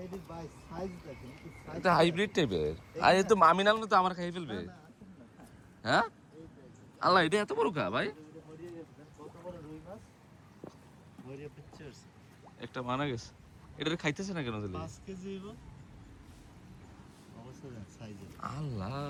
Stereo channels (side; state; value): both; identical; correlation 1.00